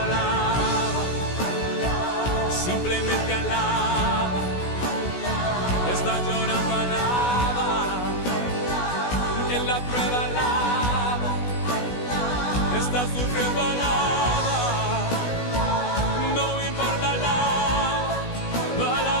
alaba, simplemente alaba. Estás llorando, alaba. En la prueba, alaba. Estás sufriendo, alaba. No importa, alaba. Tu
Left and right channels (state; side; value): late; right; 16 ms